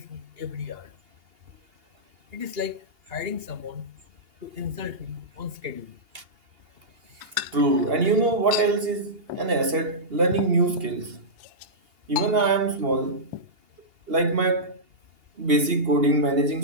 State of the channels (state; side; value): late; left; 2.8 ms